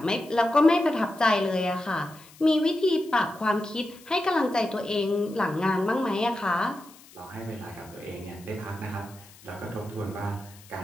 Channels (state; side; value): noise; left; hiss, 23 dB below the sound